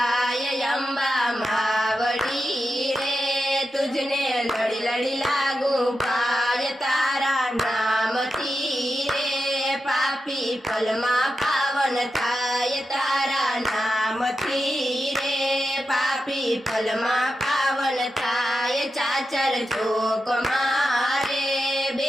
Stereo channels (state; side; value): normal; both; correlation 0.89